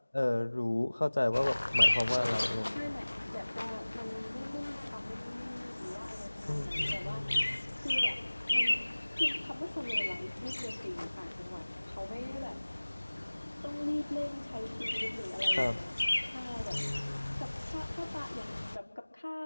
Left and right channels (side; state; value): both; inverted; correlation -1.00